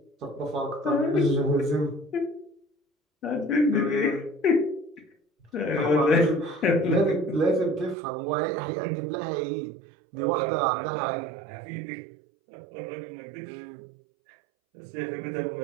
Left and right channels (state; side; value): drops out; left; at 8.0 s